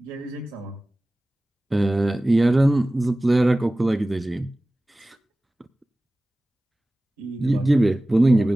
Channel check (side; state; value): both; normal; correlation 0.97